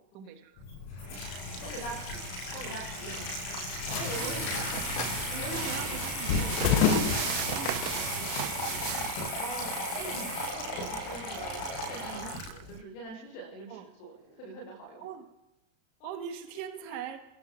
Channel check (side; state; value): right; late; 33 ms